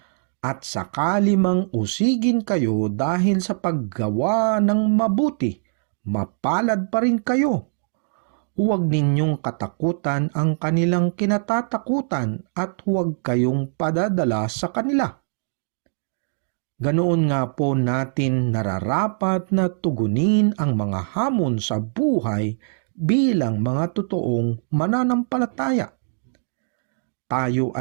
at sakali mang usigin kayo dahil sa paggawa ng mabuti, mapalad pa rin kayo. Huwag ninyong katakutan ang kanilang kinatatakutan at huwag kayong padadala sa kanila. Ganoon nga po natin nararapat na tugunin ang mga hamon sa buhay bilang mga totoong mananampalataya. Tayo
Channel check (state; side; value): silent; left; digital silence